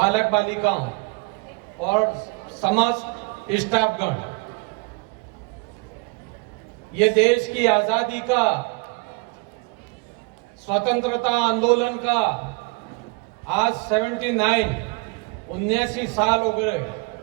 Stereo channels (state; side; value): quieter; left; 28.9 dB